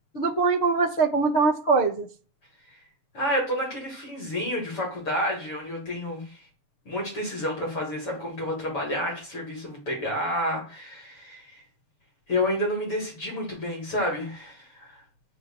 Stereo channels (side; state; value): right; late; 7.0 ms